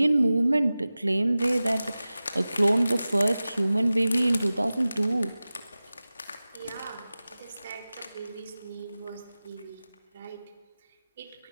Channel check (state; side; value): inverted; both; correlation -0.96